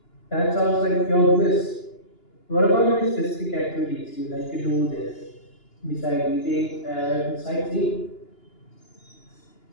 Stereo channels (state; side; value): late; right; 2.9 ms